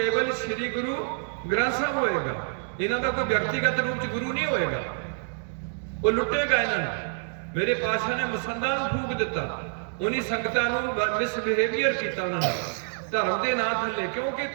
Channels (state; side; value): silent; left; 60 dB below the other